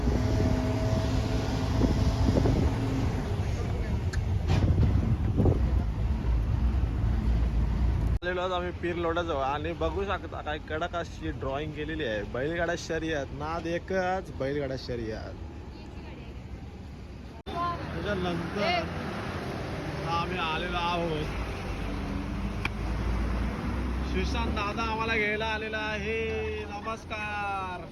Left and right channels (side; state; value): both; identical; correlation 1.00